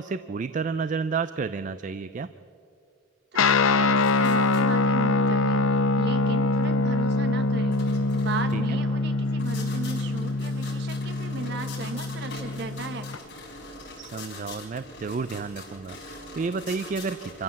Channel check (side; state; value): both; normal; correlation 0.33